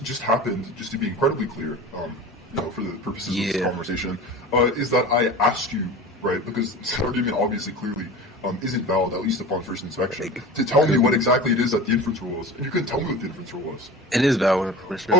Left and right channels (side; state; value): both; normal; correlation 0.35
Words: happened, just to be incredibly clear, for the purposes of this conversation, is that I asked you, right, because this argument obviously clearly isn't valid, at least upon first inspection, to tell me what exactly it is that the inference rule was. And you couldn't tell me what the inference rule was. It is valid, for sure.